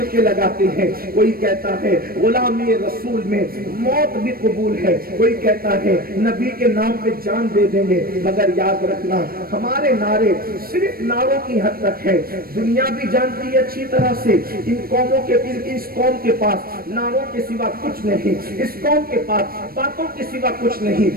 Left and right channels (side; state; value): left; late; 0.43 ms